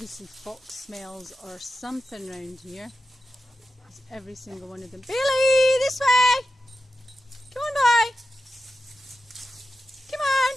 fox smells or something around here. There's every single one of them. Billy, this way! Come on, boy! Come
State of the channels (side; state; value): both; normal; correlation 0.91